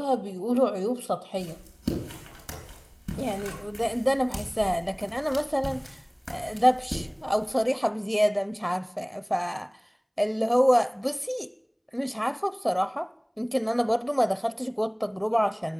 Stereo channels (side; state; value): both; identical; correlation 1.00